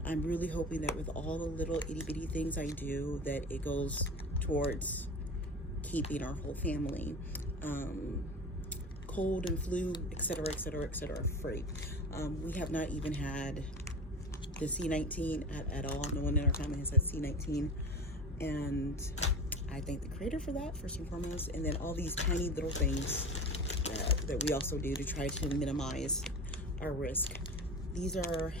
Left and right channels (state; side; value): normal; both; correlation 0.32